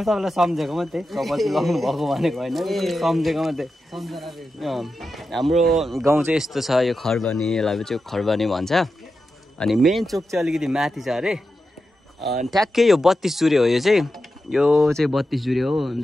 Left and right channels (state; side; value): normal; both; correlation 0.90